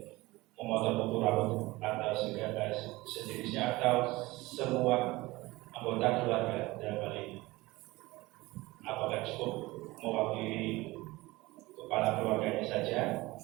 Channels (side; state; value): left; quieter; 20.4 dB